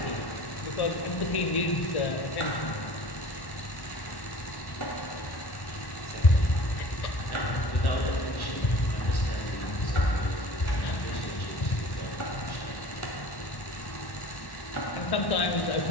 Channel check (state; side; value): late; right; 1.1 ms